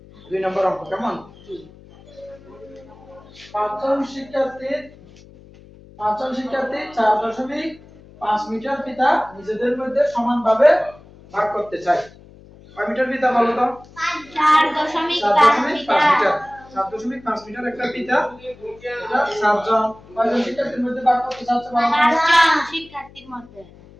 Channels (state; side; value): noise; left; hum, 23 dB below the sound